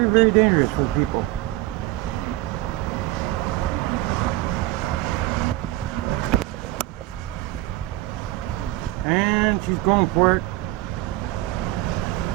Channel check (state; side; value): quieter; left; 17.2 dB